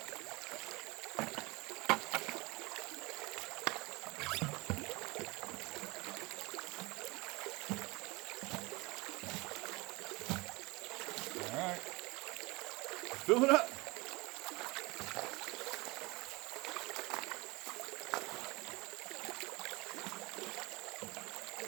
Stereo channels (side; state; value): left; quieter; 24.3 dB